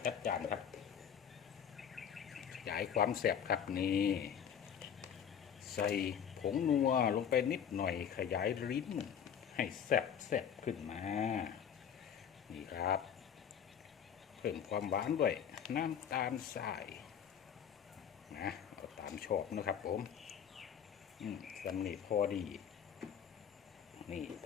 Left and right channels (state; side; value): quieter; right; 8.3 dB